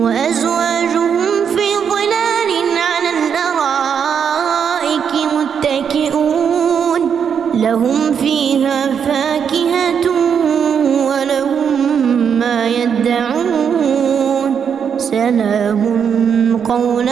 وأزواجهم في ظلال على الأرائك متكئون لهم فيها فاكهة ولهم ما يدعون سلام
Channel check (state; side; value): quieter; left; 7.3 dB